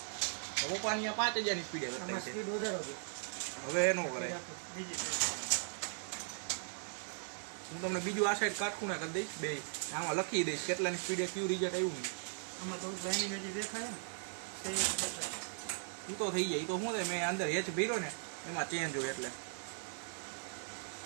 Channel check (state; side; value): silent; left; 52 dB below the other